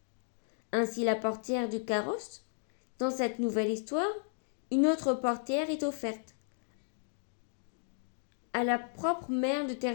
Ainsi, la portière du carrosse. Dans cette nouvelle histoire, une autre portière est offerte à la propre mère de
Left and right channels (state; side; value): silent; right; digital silence